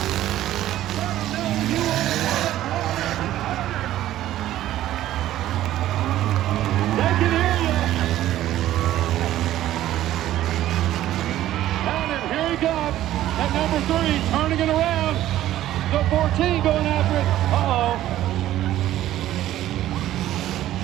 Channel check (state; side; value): quieter; left; 13.5 dB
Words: They can hear you. And here he comes at number 3, turning it around. The 14 going after it. Uh-oh.